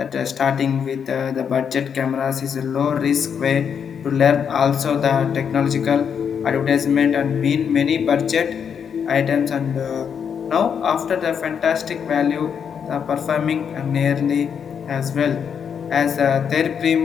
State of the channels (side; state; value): right; quieter; 7.3 dB